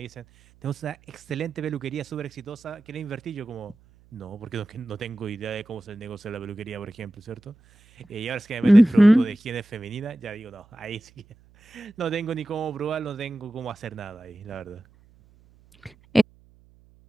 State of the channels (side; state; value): right; noise; hum, 29 dB below the sound